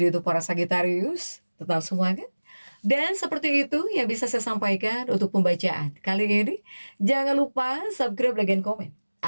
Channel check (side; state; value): both; inverted; correlation -1.00